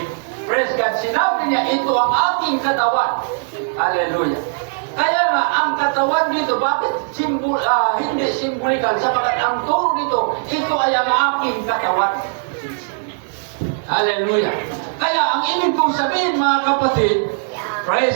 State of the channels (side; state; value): left; silent; digital silence